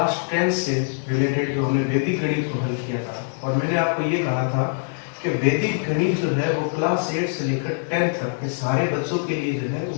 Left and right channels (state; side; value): silent; right; 61 dB below the other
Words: 10 से रिलेटेड जो हमने वैदिक गणित को हल किया था और मैंने आपको ये कहा था कि वैदिक गणित जो है वो क्लास 8 से लेकर 10 तक के सारे बच्चों के लिए जो है